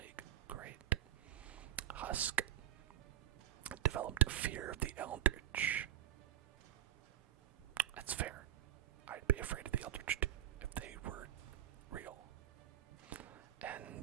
Great. Husk developed a fear of the Eldritch. That's fair. I'd be afraid of the Eldritch too, if they were real.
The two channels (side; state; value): left; quieter; 11.8 dB